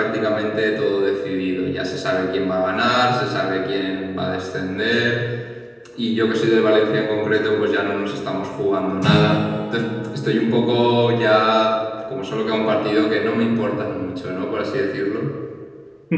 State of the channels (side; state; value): both; identical; correlation 1.00